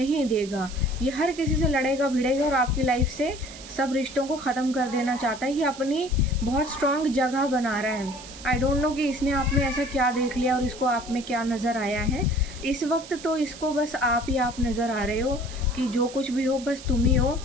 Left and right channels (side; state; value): right; noise; hiss, 16 dB below the sound